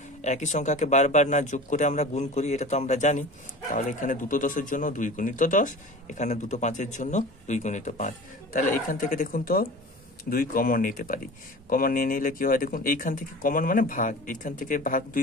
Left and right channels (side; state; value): both; normal; correlation 0.37